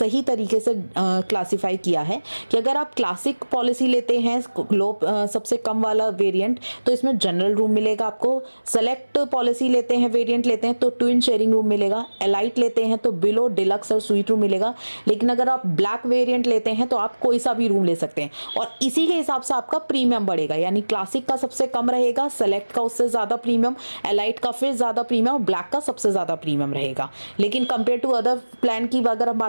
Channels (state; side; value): inverted; both; correlation -1.00